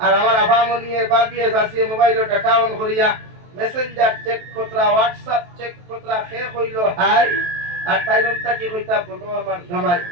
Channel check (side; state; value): left; late; 23 ms